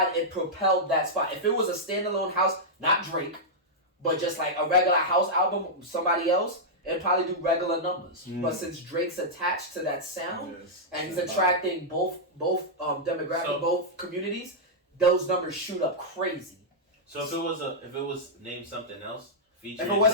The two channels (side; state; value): both; normal; correlation -0.08